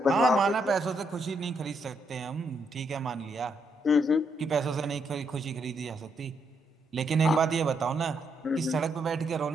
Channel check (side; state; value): both; normal; correlation 0.77